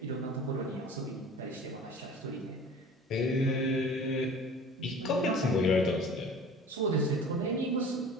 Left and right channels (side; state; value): both; normal; correlation 0.42